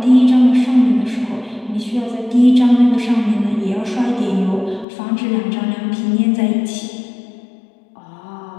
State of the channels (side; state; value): right; drops out; at 4.9 s